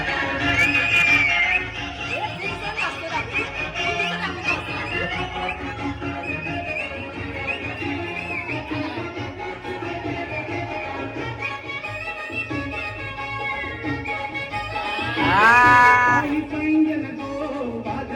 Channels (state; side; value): identical; both; correlation 1.00